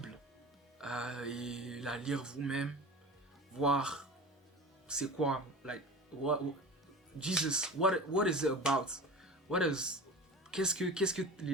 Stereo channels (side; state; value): both; normal; correlation 0.35